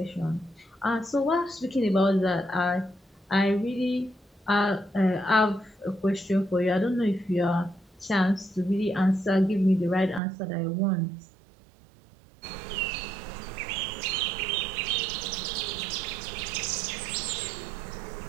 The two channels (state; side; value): drops out; left; at 10.2 s